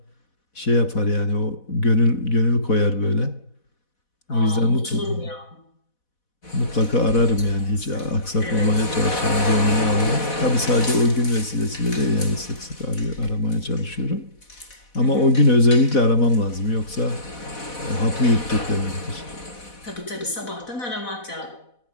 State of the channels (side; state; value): right; late; 4.1 ms